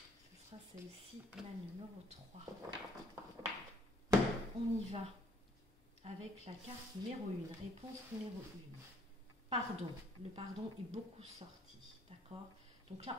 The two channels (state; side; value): normal; both; correlation 0.62